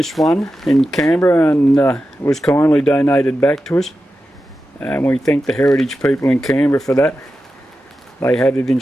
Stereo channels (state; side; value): normal; both; correlation 0.91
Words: one in Canberra and it was kindly donated back to us. And we thank the heritage people in Canberra for that. They had it in